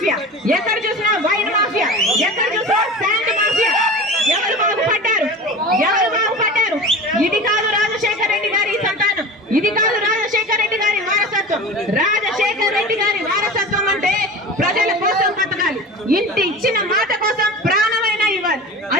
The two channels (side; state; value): both; normal; correlation 0.33